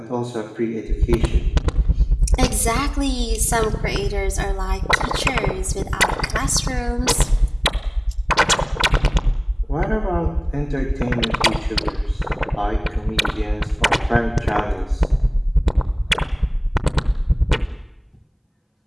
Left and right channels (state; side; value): identical; both; correlation 1.00